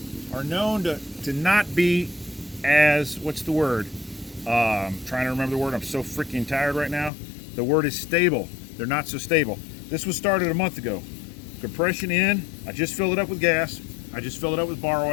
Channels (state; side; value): drops out; right; at 7.1 s